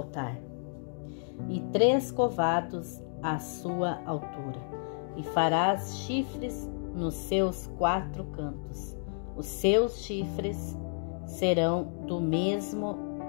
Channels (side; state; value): right; silent; digital silence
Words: e 3 covados a sua altura. E farás chifres nos seus 4 cantos. Os seus chifres serão do mesmo